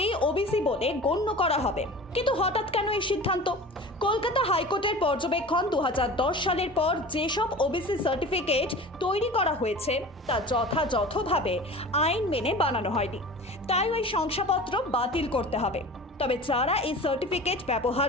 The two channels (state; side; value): normal; both; correlation 0.37